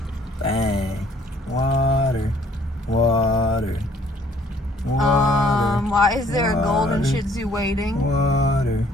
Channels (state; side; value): normal; both; correlation 0.60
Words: bang. Water, water, water. Why is there a golden water, Shih-Tzu waiting? Water.